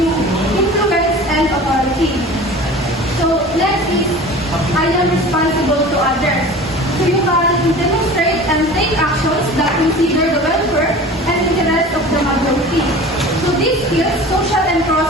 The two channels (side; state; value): both; normal; correlation 0.39